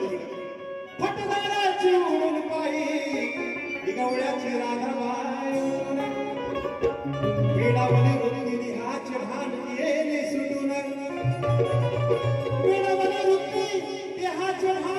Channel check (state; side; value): identical; both; correlation 1.00